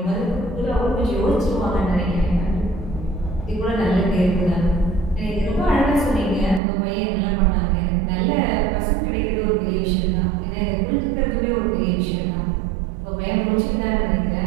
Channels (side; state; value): left; drops out; at 6.6 s